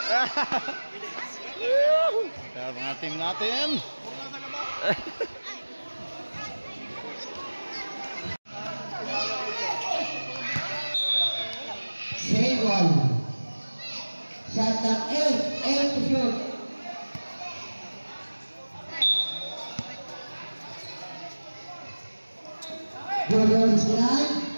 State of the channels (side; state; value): both; inverted; correlation -1.00